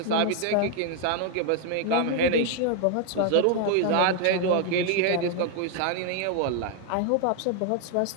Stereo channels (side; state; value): both; different; correlation 0.00